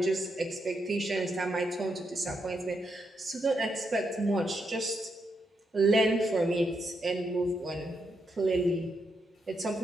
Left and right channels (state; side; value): normal; both; correlation 0.81